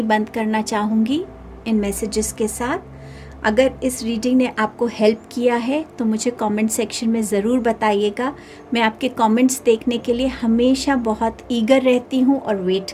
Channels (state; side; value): identical; both; correlation 1.00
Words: बंद करना चाहूँगी इन मैसेजेस के साथ। अगर इस रीडिंग ने आपको हेल्प किया है तो मुझे कमेंट सेक्शन में ज़रूर बताइएगा। मैं आपके कमेंट्स देखने के लिए हमेशा बहुत ईगर रहती हूँ और वेट